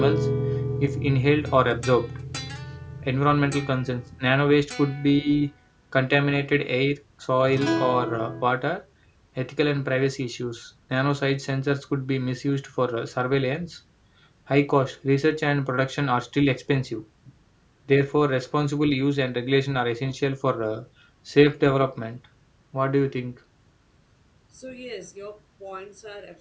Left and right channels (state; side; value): identical; both; correlation 1.00